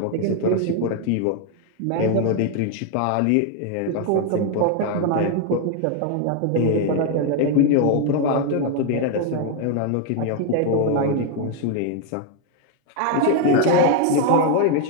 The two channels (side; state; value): both; different; correlation 0.00